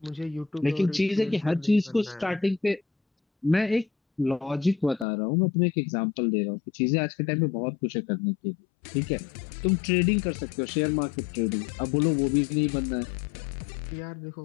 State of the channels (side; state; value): right; drops out; at 5.1 s